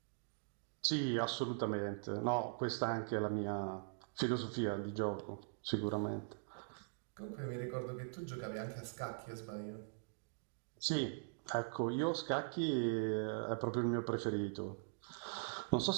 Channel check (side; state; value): left; silent; digital silence